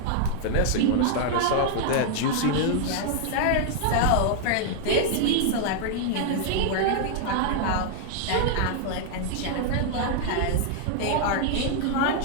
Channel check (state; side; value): different; both; correlation 0.00